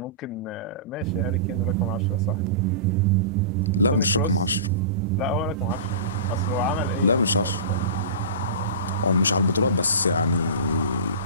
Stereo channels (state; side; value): inverted; both; correlation -0.31